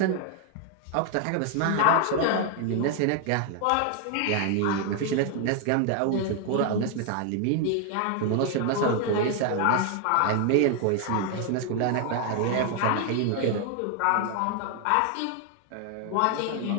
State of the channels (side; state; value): both; different; correlation 0.00